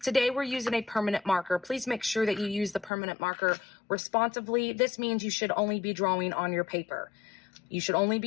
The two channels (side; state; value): right; drops out; at 2.9 s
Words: Today we're using a permanent marker. Please make sure that you use the permanent marker responsively. This means you should only be drawing on your paper. You should only